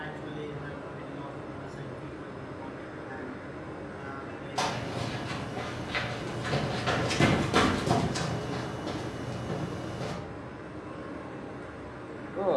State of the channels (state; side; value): identical; both; correlation 1.00